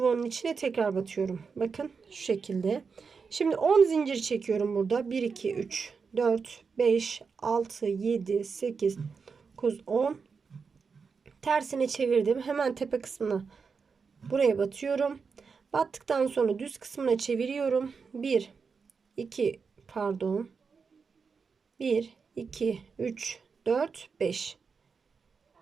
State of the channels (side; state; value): left; quieter; 5.4 dB